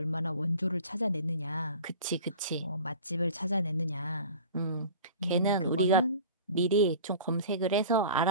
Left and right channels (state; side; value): inverted; both; correlation -0.40